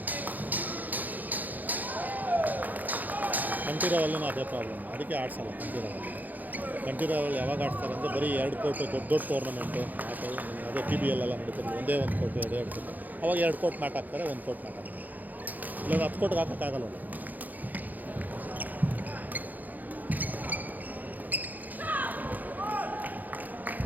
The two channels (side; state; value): left; late; 0.083 ms